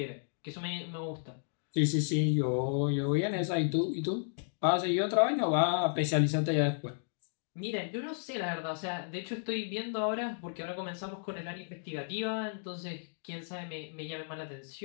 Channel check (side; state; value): right; silent; digital silence